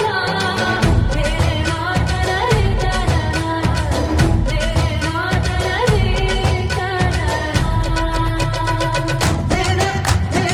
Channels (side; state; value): both; identical; correlation 1.00